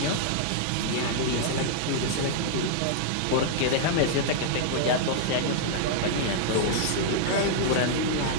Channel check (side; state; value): both; different; correlation -0.01